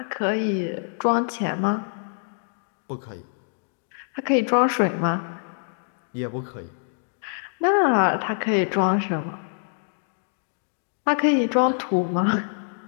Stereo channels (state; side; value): silent; right; digital silence